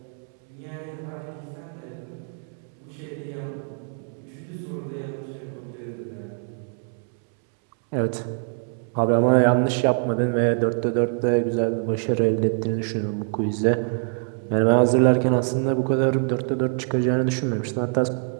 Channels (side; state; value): left; silent; 56 dB below the other